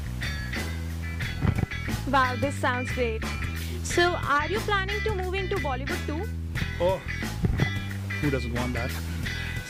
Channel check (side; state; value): both; identical; correlation 1.00